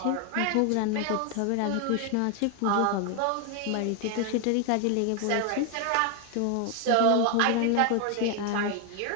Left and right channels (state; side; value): different; both; correlation 0.01